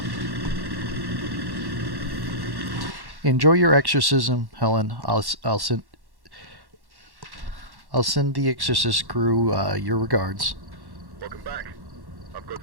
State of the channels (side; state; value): left; late; 1.1 ms